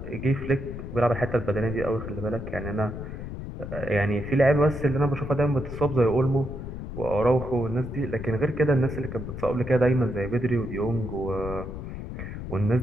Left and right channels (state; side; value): noise; left; rumble, 8 dB below the sound